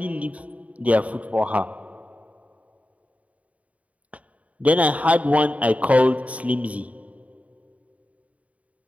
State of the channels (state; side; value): late; left; 0.068 ms